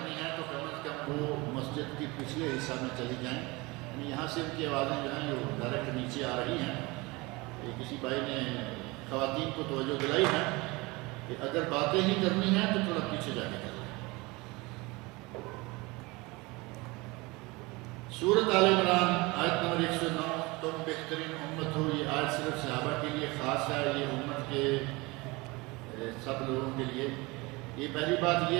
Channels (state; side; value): quieter; left; 24.0 dB